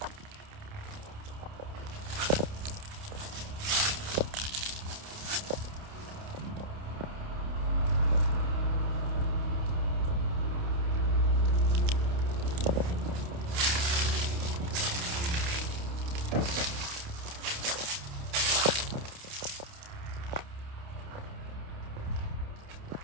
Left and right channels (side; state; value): left; late; 29 ms